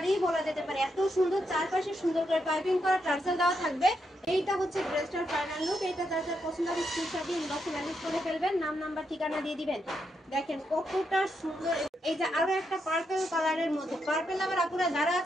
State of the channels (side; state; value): both; normal; correlation 0.81